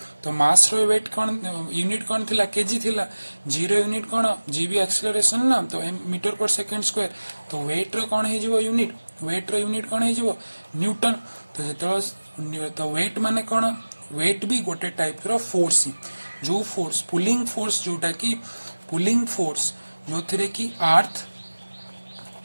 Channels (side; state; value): both; inverted; correlation -1.00